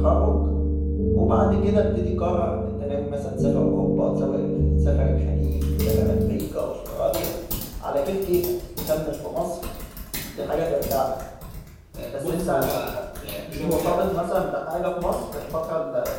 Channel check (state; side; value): identical; both; correlation 1.00